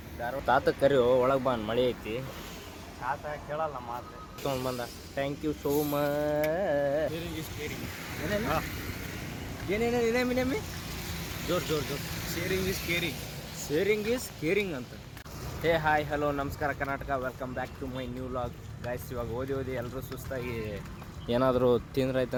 ಧಾರವಾಡ ತಾತ ಕರಿ ಒಳಗೆ ಬಂದು ಮಳೆ ಐತಿ ತಾತ ಕೇಳಲ್ಲ ಮಾತು ತೊಗೊಂಡು ಬಂದ ಥ್ಯಾಂಕ್ ಯು ಸೋ ಮಚ್. ಏನೇನೇನೇಮಿ ಜೋರ್ ಜೋರ್ ಜೋರ್ ಶೇರಿಂಗ್ ಈಸ್ ಕೇರಿಂಗ್ ಅಂತ. ಹೇ ಹಾಯ್ ಹಲೋ ನಮಸ್ಕಾರ Karnataka, welcome back to my new vlog. Guys ಇವಾಗ ಓದಿ ಎಲ್ಲರೂ ಸುಸ್ತಾಗಿ ಏನಾದರೂ ತಿಂದ್ರಾಯ್ತು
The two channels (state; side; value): identical; both; correlation 1.00